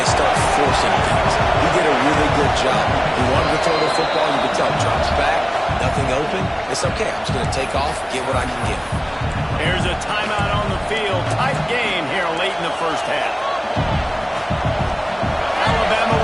open, it's okay. I'm just going to take off, get what I can get. Here's a timeout on the field. Tight game here late in the first half. Alabama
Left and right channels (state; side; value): identical; both; correlation 1.00